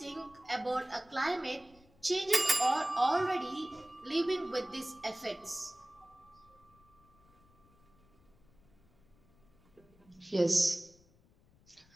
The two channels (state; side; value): noise; left; rumble, 30 dB below the sound